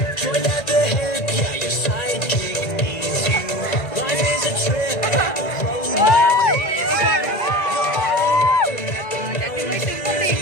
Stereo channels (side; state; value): right; late; 1.9 ms